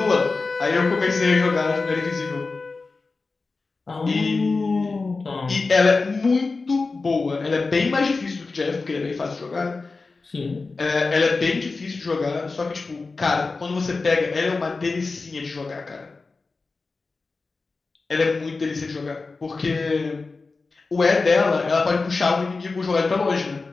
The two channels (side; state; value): right; quieter; 3.9 dB